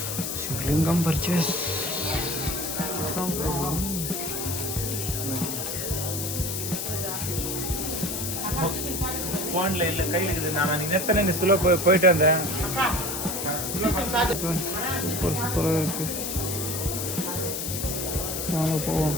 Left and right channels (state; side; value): noise; left; hiss, 3 dB below the sound